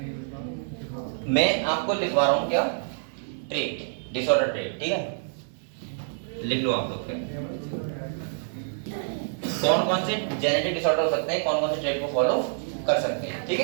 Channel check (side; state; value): left; silent; 60 dB below the other